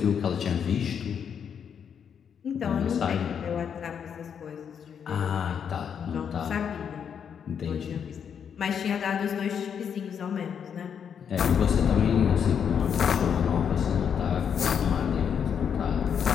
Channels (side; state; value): right; quieter; 7.7 dB